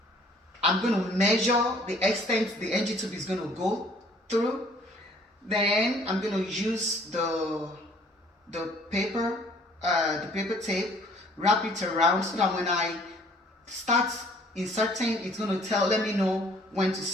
I'm going to measure the extent the NG tube is going to go through. Then I'm going to use the paper tape, wrap it around so that when I start inserting, it's going to let me know when to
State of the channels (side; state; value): both; normal; correlation 0.57